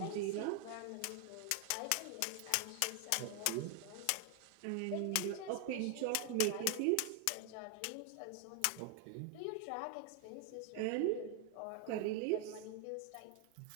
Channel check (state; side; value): different; both; correlation 0.00